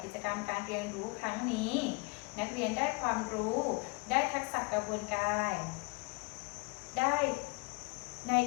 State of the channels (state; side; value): quieter; right; 29.1 dB